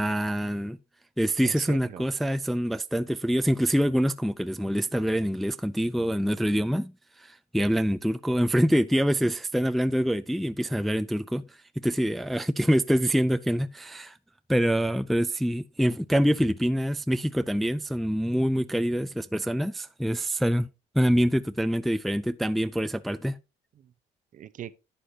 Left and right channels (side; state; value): both; normal; correlation 0.98